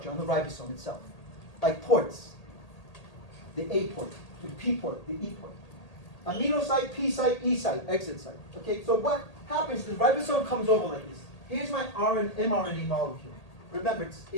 on the ribosome itself. Like ports. The A port, the P port, the E port. Amino site, P site, E site, exit site. Okay, so what happens, the ribosome comes over like this. Here's my mRNA molecule. Remember, it's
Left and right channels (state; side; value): late; right; 1.8 ms